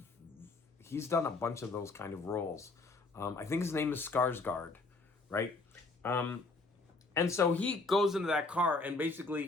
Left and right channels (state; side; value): quieter; right; 3.5 dB